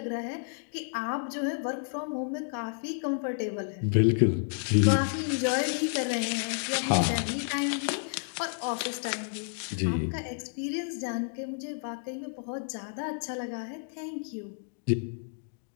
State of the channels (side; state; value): right; silent; digital silence